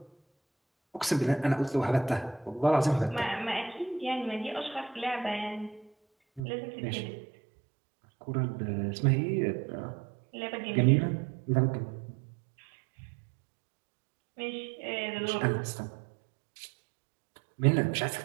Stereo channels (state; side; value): drops out; left; at 6.4 s